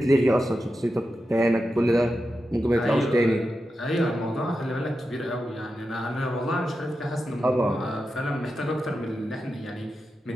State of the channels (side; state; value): both; normal; correlation 0.90